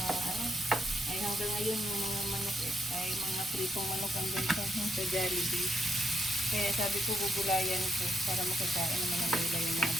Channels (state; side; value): normal; both; correlation 0.79